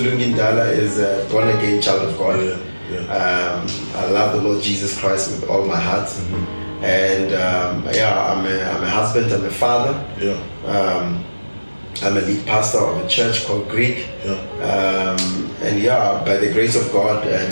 is a born again child of God. Yeah. I love the Lord Jesus Christ with all my heart. Mm-hmm. And I'm a husband, I'm a father. Yeah. I'm a lead pastor of a church called GRIC. Yeah. And by the grace of God,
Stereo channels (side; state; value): both; inverted; correlation -1.00